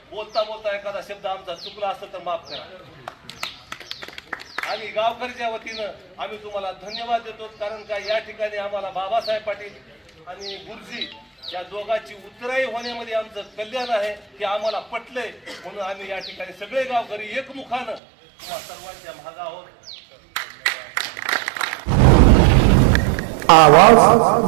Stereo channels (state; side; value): drops out; left; at 18.0 s